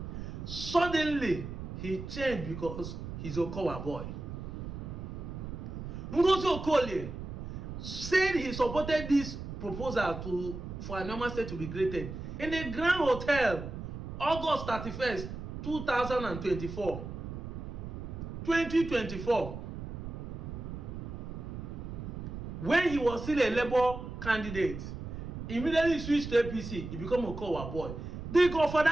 Suddenly, he changed because he's Okowa boy. Ngozi Okolie said he supported this proposal for Anioma State to be created in a Grand Hotel, August 31st, 2024. 2024. When he was still a Labour candidate, immediately switched to APC, he became a Okowa boy. For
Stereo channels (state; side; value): noise; right; rumble, 8 dB below the sound